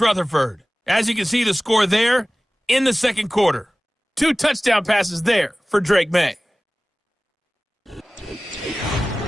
Rutherford. As you can see, the score there in the second quarter. 2 touchdown passes there for Drake May.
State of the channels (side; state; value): both; normal; correlation 0.98